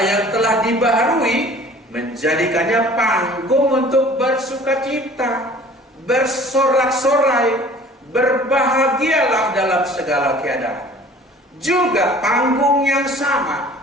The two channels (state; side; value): normal; both; correlation 0.48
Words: yang telah dibaharui menjadikannya panggung untuk bersukacita, bersorak-sorai, berbahagialah dalam segala keadaan. Juga panggung yang sama